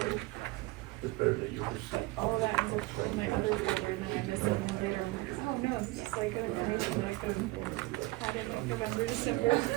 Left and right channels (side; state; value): left; quieter; 21.1 dB